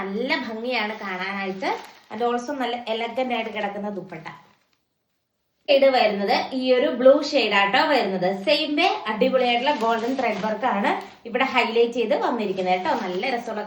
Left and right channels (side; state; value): both; identical; correlation 1.00